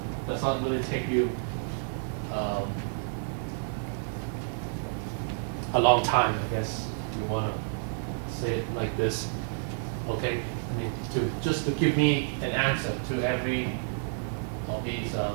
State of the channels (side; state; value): left; silent; 58 dB below the other